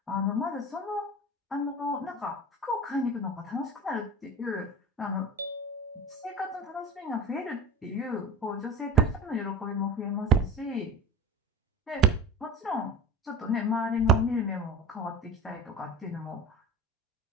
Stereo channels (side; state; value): both; normal; correlation 0.34